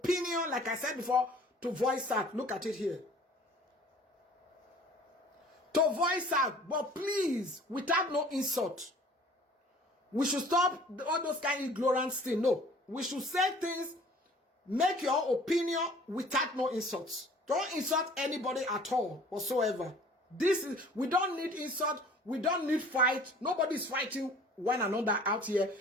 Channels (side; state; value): both; normal; correlation 0.50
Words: like I said before, to voice out. Look at it here. To voice out. But please, without no insult. We should stop all those kind of ignorance things. No. We should say things, make your opinion without no insults. Don't insult anybody at all, whatsoever. We don't need insult. We don't need fight. Nobody's fighting one another out here.